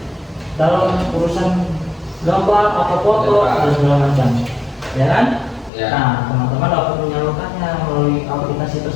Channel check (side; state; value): right; drops out; at 5.7 s